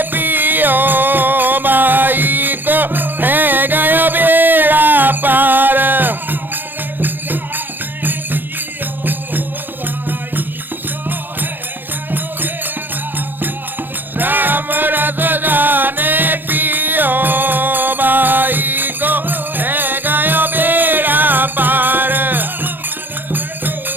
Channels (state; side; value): late; left; 0.093 ms